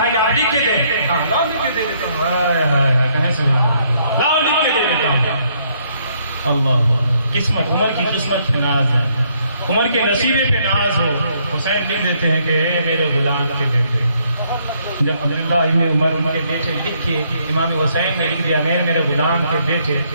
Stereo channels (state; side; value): inverted; both; correlation -0.70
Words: کہ آپ لکھ کے دیں، لاؤ لکھ کے دے دیتا ہوں، لاؤ لکھ کے دے دیتا ہوں۔ اللہ قسمت، عمر کی قسمت پہ ناز ہے، عمر کے نصیبے پہ ناز ہو، حسین لکھ دیتے ہیں کہ اے میرے غلام کے بیٹے۔ جب عبداللہ ابن عمر ان کے بیٹے لکھ کے امام حسین نے لکھ دیا میرے غلام کے بیٹے،